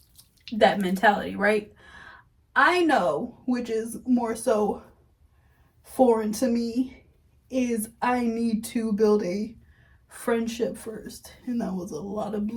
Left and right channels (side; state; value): both; identical; correlation 1.00